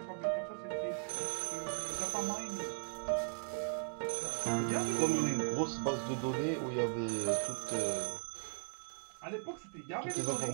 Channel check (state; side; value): silent; left; 53 dB below the other